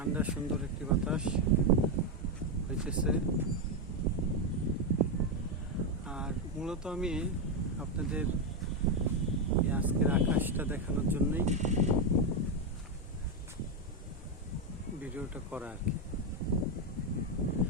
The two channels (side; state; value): both; normal; correlation 0.05